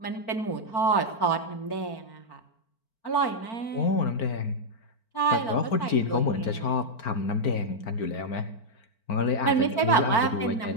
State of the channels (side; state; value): right; late; 4.4 ms